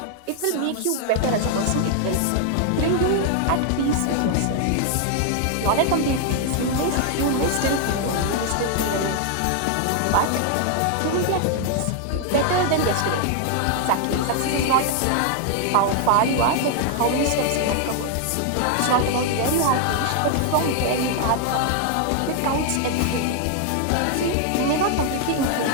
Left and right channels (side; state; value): both; different; correlation 0.00